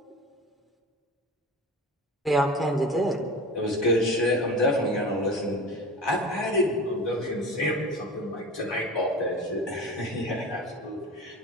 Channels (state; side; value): normal; both; correlation 0.33